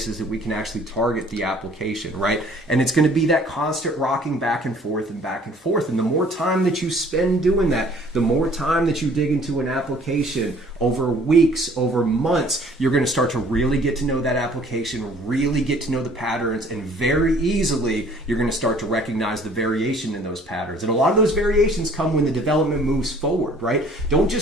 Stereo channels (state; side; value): normal; both; correlation 0.55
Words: that we can actually target the application, right? And it's going to be that constant rocking back and forth and back and forth. And the more time that you spend doing that, the more time that you dig into an application over weeks, over months, you're going to start to really get to know that application, really get to know the patterns, and very easily you're going to start to recognize the variation in those patterns. And a lot of those variations come when the development moves forward, right? Don't